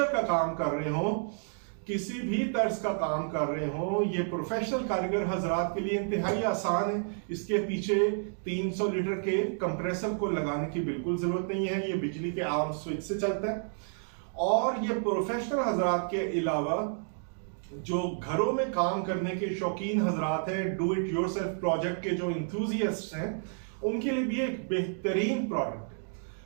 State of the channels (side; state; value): left; silent; digital silence